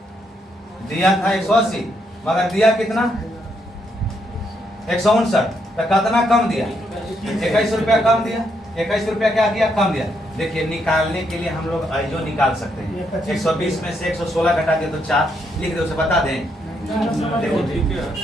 दिया था 180, मगर दिया कितना? 159। तो कितना कम दिया? 21 रुपया कम दिया। 21 रुपया क्या किया? कम दिया। देखिए, निकालने के लिए हम लोग जो निकाल सकते हैं, 120 में से 116 घटा दिया तो 4 लिख दे, उसे बता दें। देखो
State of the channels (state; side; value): normal; both; correlation 0.77